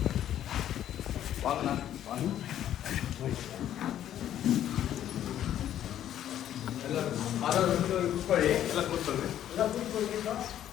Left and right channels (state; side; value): quieter; right; 11.2 dB